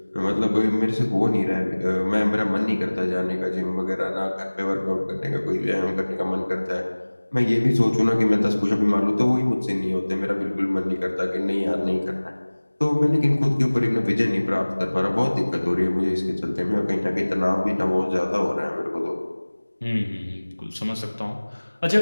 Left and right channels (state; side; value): inverted; both; correlation -1.00